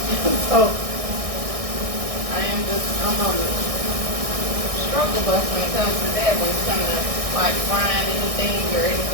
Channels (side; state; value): left; late; 1.6 ms